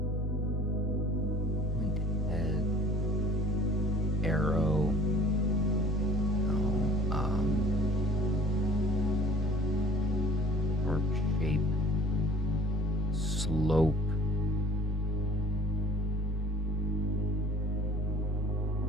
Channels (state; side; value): normal; both; correlation 0.51